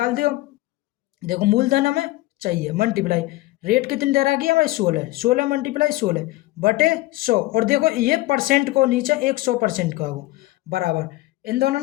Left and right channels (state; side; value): quieter; right; 18.6 dB